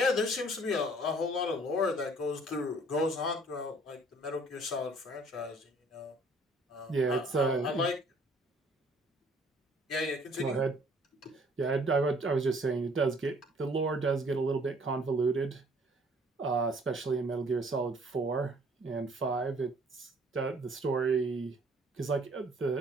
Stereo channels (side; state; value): both; normal; correlation 0.58